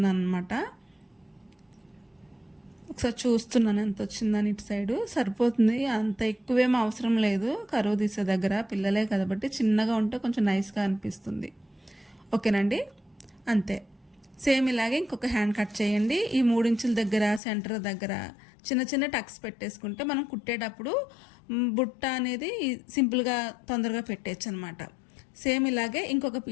అనమాట. ఒకసారి చూస్తున్నాను ఎంత వచ్చిందని. ఇటు సైడు సరిపోతుంది, అంత ఎక్కువేం అవసరం లేదు. కరువు తీసే దగ్గర పిల్లలే కాబట్టి చిన్నగా ఉంటే కొంచెం నైస్గా అనిపిస్తుంది. ఓకేనండి. అంతే. సేమ్ ఇలాగే ఇంకొక హ్యాండ్ కట్ చేయండి. ఈ 3 ఇంచుల దగ్గర సెంటర్ దగ్గర చిన్న చిన్న టక్స్ పెట్టేసుకుంటే మనం కుట్టేటప్పుడు బుట్ట అనేది సింపుల్గా తొందరగా పెట్టేయచ్చు అనమాట. సేమ్ ఇలాగే ఇంకొక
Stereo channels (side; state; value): right; drops out; at 17.4 s